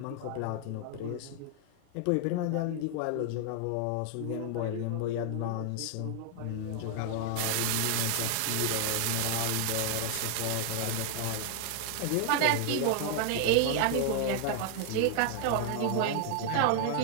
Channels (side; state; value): both; different; correlation 0.00